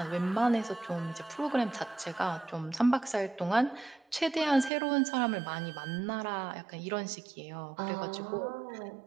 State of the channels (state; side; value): drops out; left; at 4.7 s